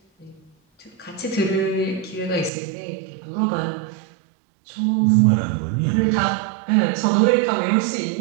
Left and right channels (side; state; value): left; drops out; at 2.5 s